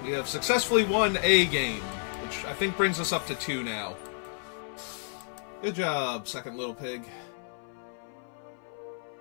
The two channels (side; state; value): right; silent; 57 dB below the other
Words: We have successfully won a game, which I think brings us up to 2 now. Good job, second little pig.